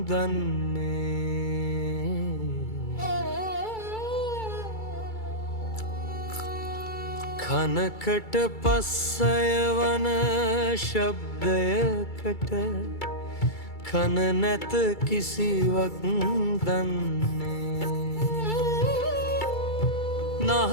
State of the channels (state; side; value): late; right; 2.3 ms